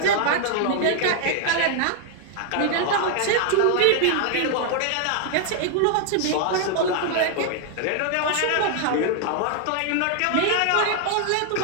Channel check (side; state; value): both; different; correlation 0.00